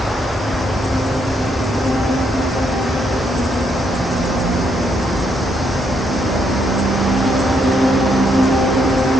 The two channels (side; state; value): both; normal; correlation 0.75